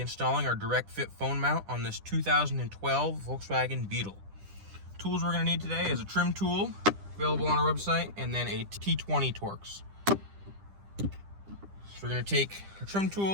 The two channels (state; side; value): late; left; 10 ms